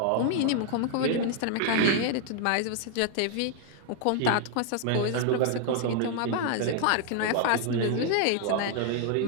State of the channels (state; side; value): different; both; correlation 0.00